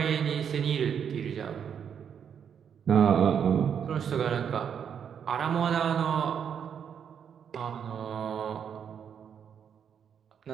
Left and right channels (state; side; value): quieter; left; 7.9 dB